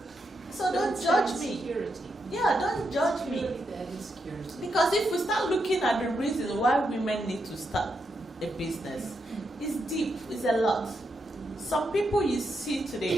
So don't judge me. Security. Yeah, don't judge me. That is security. Because if we start looking at the reasons why women need to start a business, it's deep, it's a lot. Some people you see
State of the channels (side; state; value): both; normal; correlation 0.82